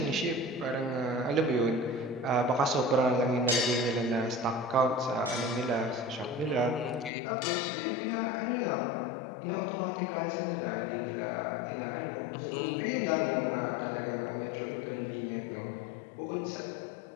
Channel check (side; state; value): right; drops out; at 7.1 s